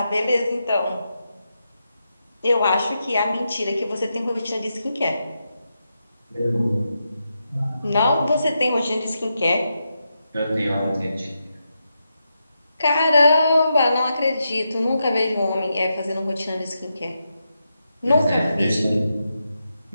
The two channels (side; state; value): both; inverted; correlation -0.86